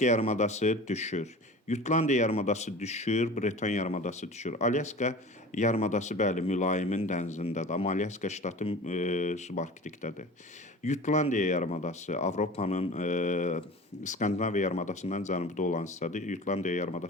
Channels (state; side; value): normal; both; correlation 0.37